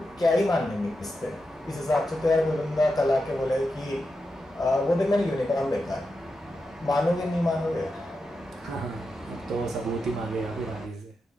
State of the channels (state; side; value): normal; both; correlation 0.88